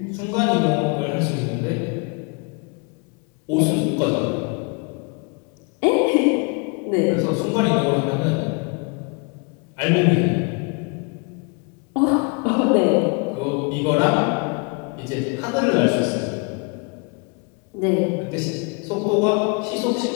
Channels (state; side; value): quieter; right; 33.3 dB